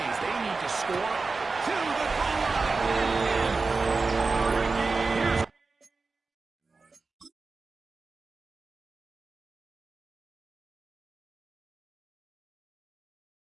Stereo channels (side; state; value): left; quieter; 4.0 dB